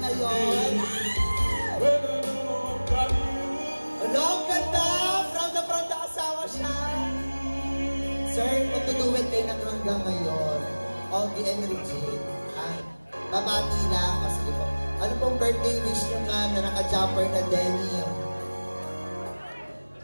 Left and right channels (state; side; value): inverted; both; correlation -1.00